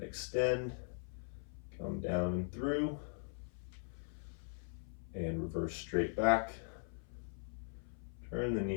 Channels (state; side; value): silent; right; 51 dB below the other